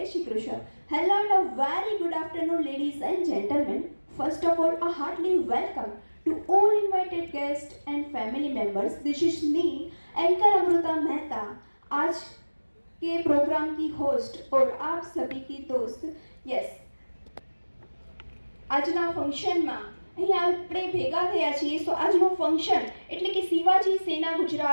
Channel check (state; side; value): inverted; both; correlation -1.00